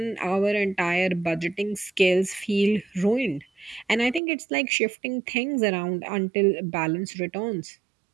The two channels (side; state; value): left; drops out; at 4.2 s